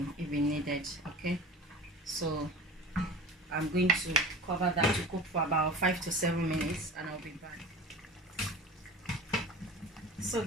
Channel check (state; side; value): normal; both; correlation 0.35